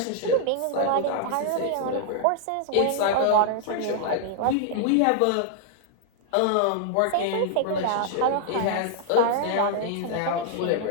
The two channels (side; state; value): both; different; correlation -0.01